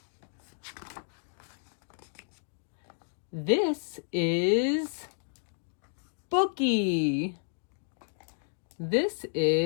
This is Bookie. This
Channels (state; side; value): silent; right; digital silence